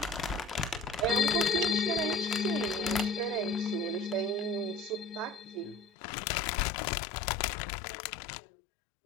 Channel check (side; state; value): right; drops out; at 5.9 s